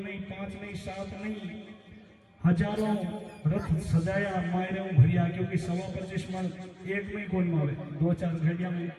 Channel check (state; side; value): identical; both; correlation 1.00